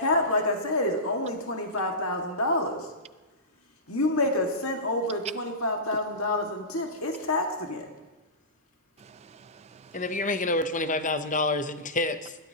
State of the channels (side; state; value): both; normal; correlation -0.20